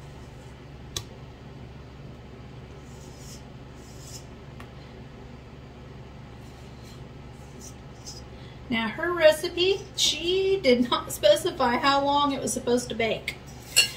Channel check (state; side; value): identical; both; correlation 1.00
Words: Now her recipe, she did not specify how long it was supposed to bake.